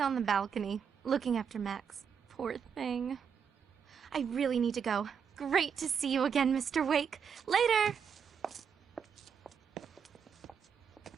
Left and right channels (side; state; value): left; quieter; 7.0 dB